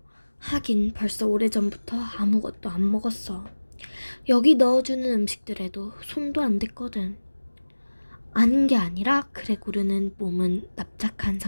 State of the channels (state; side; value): inverted; both; correlation -1.00